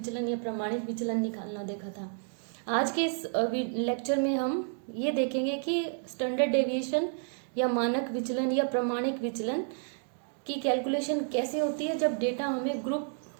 या प्रमाणित विचलन निकालना देखा था। आज के इस लेक्चर में हम ये देखेंगे कि स्टैंडर्ड डेविएशन या मानक विचलन या प्रमाणित विचलन की कैलकुलेशन कैसे होती है जब डेटा हमें ग्रुप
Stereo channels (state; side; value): silent; left; 57 dB below the other